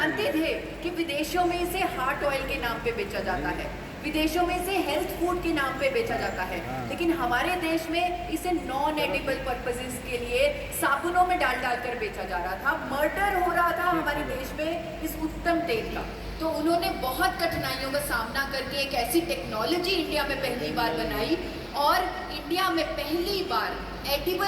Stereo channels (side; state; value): both; identical; correlation 1.00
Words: थे कि विदेशों में इसे हार्ट ऑयल के नाम पे बेचा जाता है, विदेशों में इसे हेल्थ फूड के नाम पे बेचा जाता है, लेकिन हमारे देश में इसे नॉन एडिबल पर्पसेस के लिए साबुनों में डाल कर बेचा जा रहा था। मर्डर हो रहा था हमारे देश में इस उत्तम तेल का। तो उन्होंने बहुत कठिनाइयों का सामना करके एक ऐसी टेक्नोलॉजी इंडिया में पहली बार बनाई और इंडिया में पहली बार